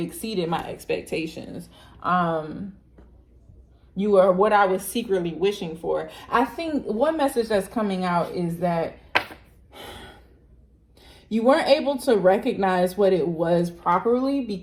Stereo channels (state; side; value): identical; both; correlation 1.00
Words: my expectations. You are what I was secretly wishing for. I think one message that's coming out is that you weren't able to recognize what it was properly,